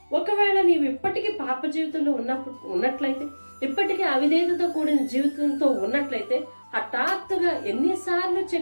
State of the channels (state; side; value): inverted; both; correlation -1.00